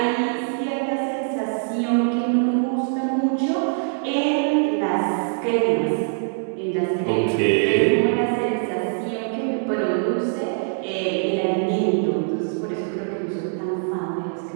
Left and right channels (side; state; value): left; silent; digital silence